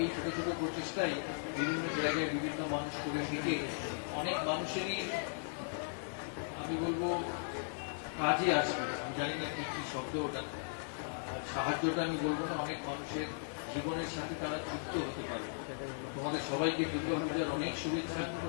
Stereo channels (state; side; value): silent; right; digital silence